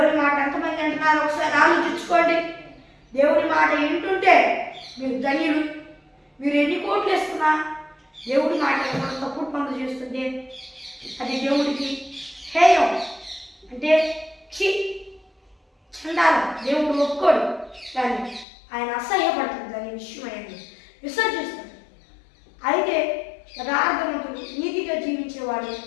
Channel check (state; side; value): drops out; right; at 18.4 s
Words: మాట ఎంతమంది అంటున్నారు ఒకసారి ఆలోచించుకోండి. దేవుని మాట వింటుంటే మీరు ధన్యులు. మీరు ఎన్ని కోట్లు వేస్తున్నా దేవుడి మాట తప్పుడు పనులు చేస్తుంటే అది దేవుడికి హేయం, అంటే చండాలం. దేవుడు ఒప్పుకోడు, కానీ ఆయన అసహ్యపడుతుంది. దాని విషయం అనేది విసర్జిస్తాడు. అయితే యథార్థవంతుడు నీతిగా జీవించేవాడు